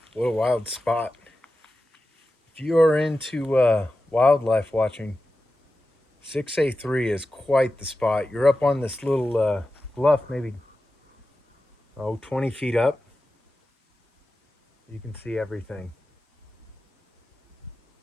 what a wild spot. If you are into wildlife watching, 6A3 is quite the spot. You're up on this little bluff, maybe 20 feet up. You can see everything.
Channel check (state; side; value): normal; both; correlation 0.93